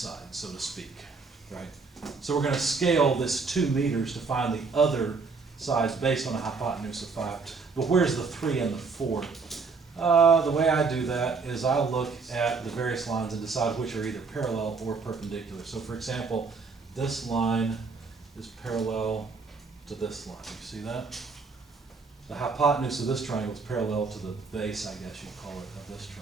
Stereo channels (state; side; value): quieter; left; 4.6 dB